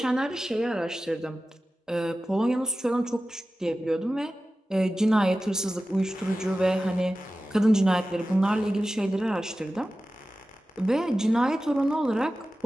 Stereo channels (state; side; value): normal; both; correlation 0.95